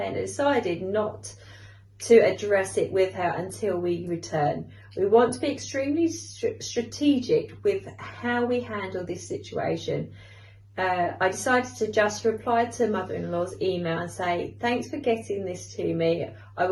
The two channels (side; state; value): both; identical; correlation 1.00